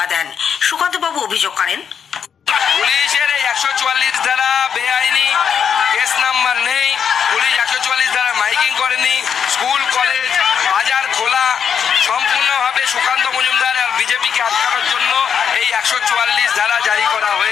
দেন। সুকান্ত বাবু অভিযোগ করেন, পুলিশের 144 ধারা বেআইনি, কেস নাম্বার নেই, পুলিশ 144 ধারা মাইকিং করেনি, স্কুল কলেজ বাজার খোলা, সম্পূর্ণভাবে সুকান্ত মজুমদার আর বিজেপিকে আটকানোর জন্য এই 144 ধারা জারি করা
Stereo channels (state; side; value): quieter; right; 7.5 dB